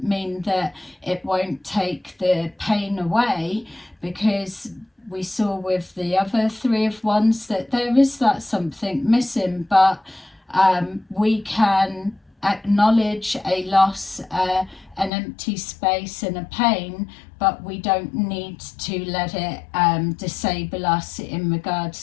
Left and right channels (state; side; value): drops out; right; at 15.1 s